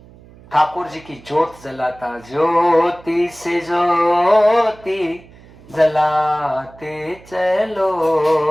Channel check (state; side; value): noise; right; hum, 23 dB below the sound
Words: ठाकुर जी की जोत जलाता, ज्योति से ज्योति जलाते चलो,